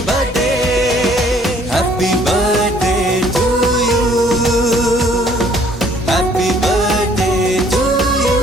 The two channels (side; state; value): both; normal; correlation 0.59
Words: birthday happy birthday to you happy birthday to you